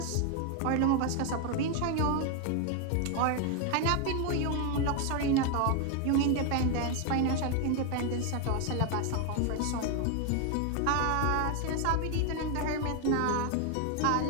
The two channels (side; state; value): both; different; correlation 0.01